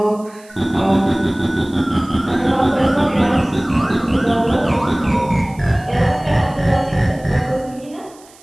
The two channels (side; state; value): right; noise; hiss, 26 dB below the sound